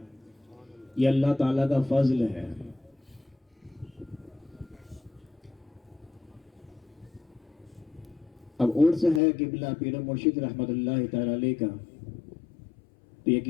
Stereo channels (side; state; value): right; drops out; at 9.2 s